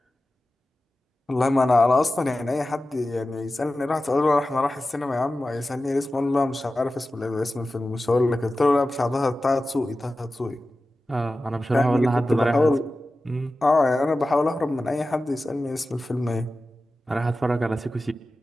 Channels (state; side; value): normal; both; correlation 0.94